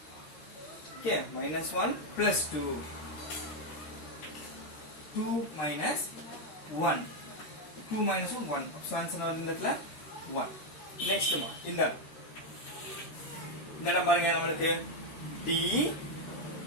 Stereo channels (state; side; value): late; right; 13 ms